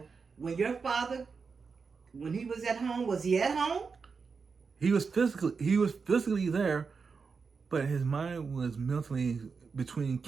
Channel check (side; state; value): left; quieter; 5.2 dB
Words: when your father, when he was at home, was he at home? He was physically there, but his mind was mentally between